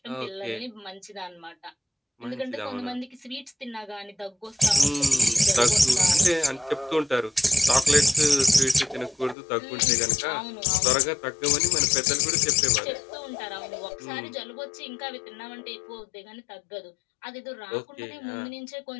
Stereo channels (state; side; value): drops out; right; at 9.3 s